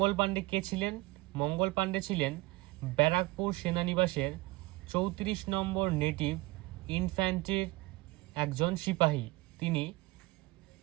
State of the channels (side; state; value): left; quieter; 21.2 dB